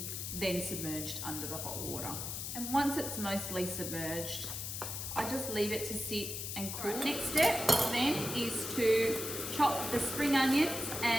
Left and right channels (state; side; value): noise; left; hiss, 5 dB below the sound